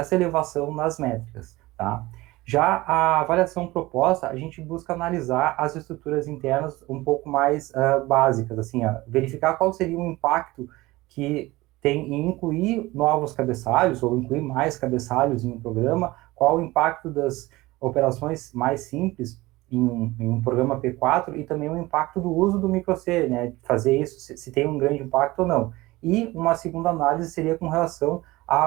elevação nas métricas, tá? Já a avaliação proposta, a gente busca analisar as estruturas internas um pouco mais básicas, assim, verificar qual seria o impacto que tem em incluir novos cabeçalhos, ou incluir mais cabeçalhos em um programa, qual o impacto das operações mais simples em um programa P4, e também o impacto do uso do micro-C, né, fazer isso, se tem um grande impacto ou não. E uma segunda análise seria com relação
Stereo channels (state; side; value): quieter; left; 19.8 dB